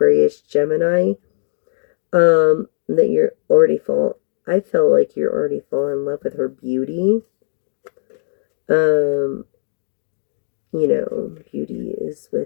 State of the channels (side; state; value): right; silent; digital silence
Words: Gemini, that you're already I feel like you're already falling in love with her beauty. Beauty is